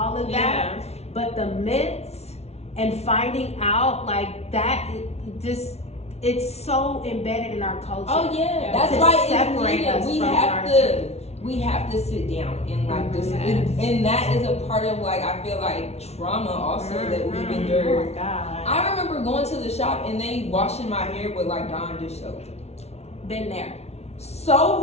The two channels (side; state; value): right; late; 0.31 ms